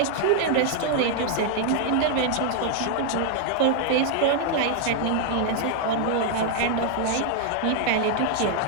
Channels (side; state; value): both; different; correlation 0.00